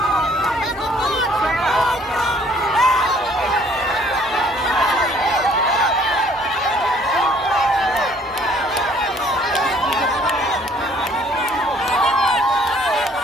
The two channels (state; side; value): normal; both; correlation 0.59